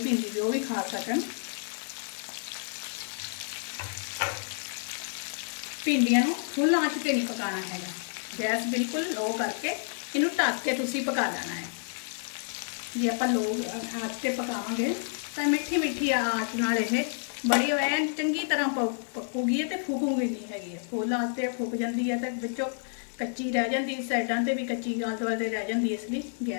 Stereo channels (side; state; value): right; silent; digital silence